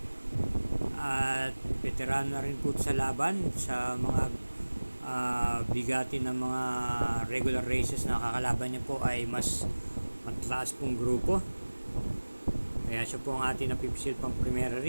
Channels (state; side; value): inverted; both; correlation -1.00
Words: At veteran na rin po sa laban sa mga bigati ng mga regular races na kakalaban niya po ay mas mataas pong grupo. Kaya siya po ang ating napipisil pang primera